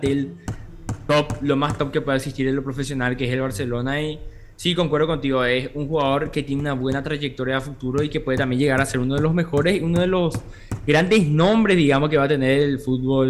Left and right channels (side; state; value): both; identical; correlation 1.00